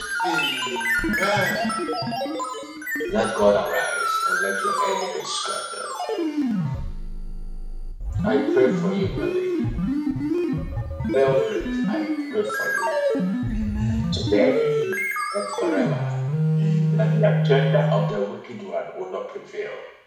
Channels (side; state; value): both; identical; correlation 1.00